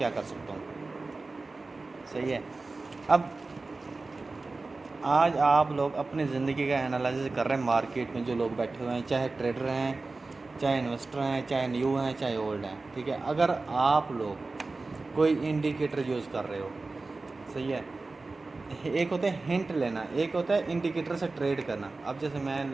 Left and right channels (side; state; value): left; quieter; 3.6 dB